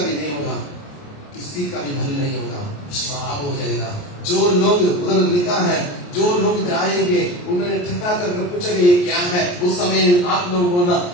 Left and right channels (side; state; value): right; late; 28 ms